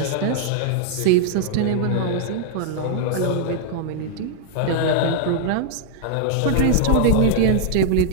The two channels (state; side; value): different; both; correlation -0.01